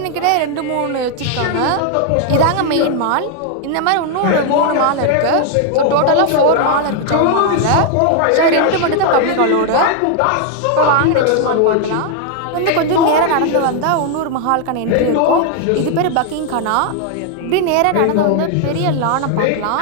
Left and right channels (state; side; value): different; both; correlation 0.00